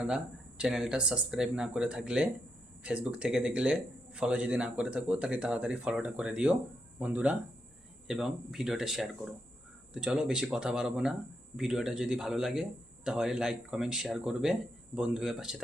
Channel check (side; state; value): both; normal; correlation 0.82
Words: চ্যানেলটা সাবস্ক্রাইব না করে থাকলে, ফেসবুক থেকে দেখলে ফলো যদি না করে থাকো তাহলে তাড়াতাড়ি ফলোটা করে দিও বন্ধুরা, এবং ভিডিওটা শেয়ার করো। তো চলো বেশি কথা বাড়াবো না, ভিডিওটা যদি ভালো লাগে তাহলে লাইক কমেন্ট শেয়ার করবে, বন্ধু হয়ে পাশে